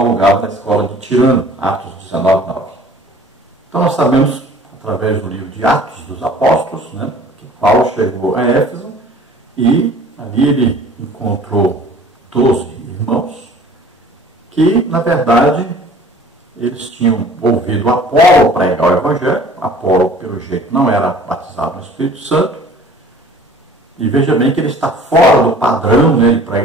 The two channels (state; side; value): normal; both; correlation 0.49